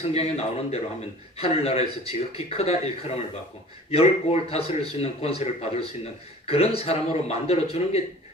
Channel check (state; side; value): normal; both; correlation 0.45